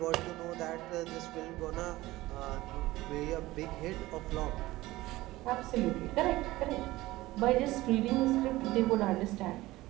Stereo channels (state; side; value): quieter; left; 18.1 dB